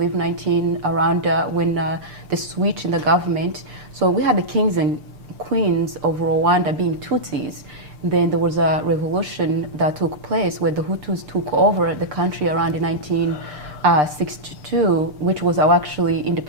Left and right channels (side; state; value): left; late; 6.7 ms